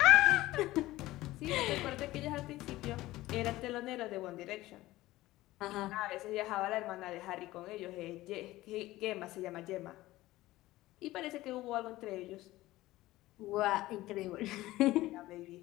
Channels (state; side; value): quieter; right; 17.3 dB